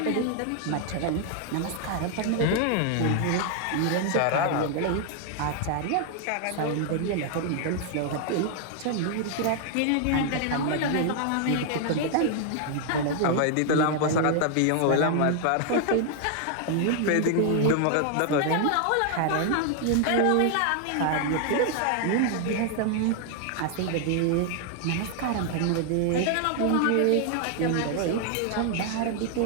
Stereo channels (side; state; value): both; different; correlation 0.00